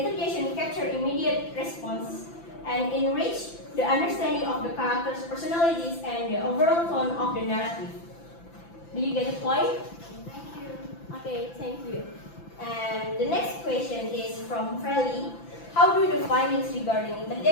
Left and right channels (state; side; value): late; right; 5.9 ms